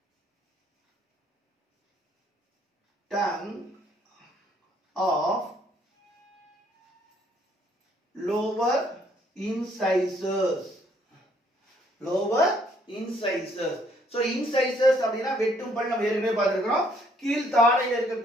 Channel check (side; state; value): both; normal; correlation 0.66